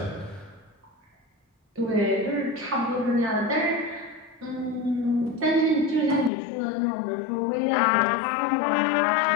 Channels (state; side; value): drops out; right; at 6.3 s